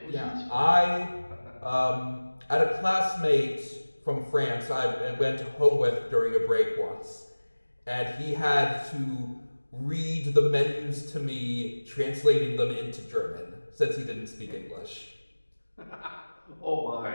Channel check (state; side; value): inverted; both; correlation -1.00